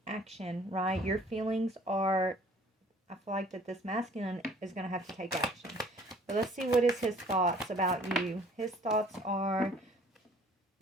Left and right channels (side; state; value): both; normal; correlation 0.54